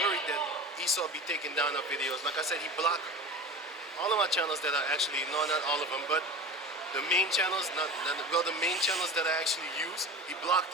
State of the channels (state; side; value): normal; both; correlation 0.32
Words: that Esau be taking down our videos. Like I said, he blocked all of my channels that are actually, no, not all of them, but the main channels, the main channels that I actually use, he blocked